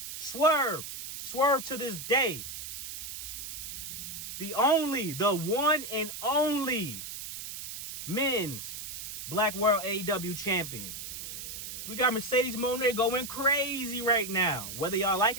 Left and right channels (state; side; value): noise; right; hiss, 8 dB below the sound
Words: Swerve to this day. The one and only men's Black World AEW champion. We got Mercedes Moné going crazy right now, whether y'all like